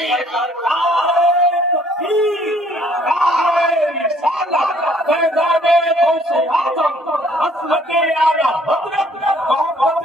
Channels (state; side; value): normal; both; correlation 0.60